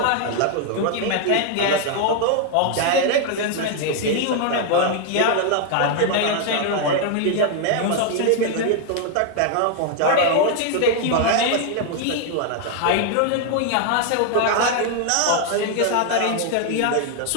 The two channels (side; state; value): both; different; correlation 0.00